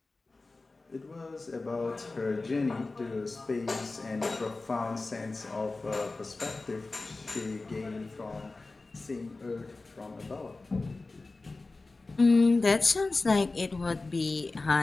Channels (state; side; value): quieter; right; 3.4 dB